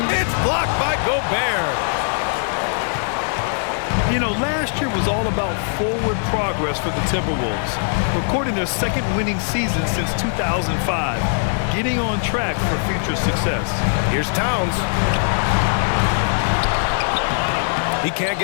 blocked by Gobert. You know, last year was all about forward progress for the Timberwolves, recording their second winning season since 2005, getting on track for future success. Here's Towns. He can't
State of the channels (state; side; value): silent; right; digital silence